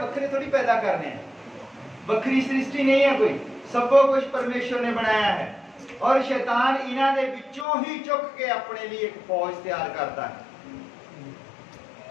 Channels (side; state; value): right; drops out; at 7.7 s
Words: थोड़ी पैदा करने हैं, वखरी सृष्टि नहीं है कोई, सब कुछ परमेश्वर ने बनाया है। और शैतान इन्हां दे विचों ही चुक के अपने लिए एक फौज तैयार करता है।